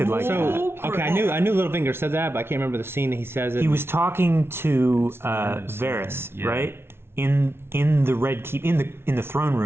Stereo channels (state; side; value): late; left; 0.12 ms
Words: like that. So okay, I knew Littlefinger said that, but I can't remember the scene that he says it. He was talking to Varys, Yeah. right? In the Red Keep, in the throne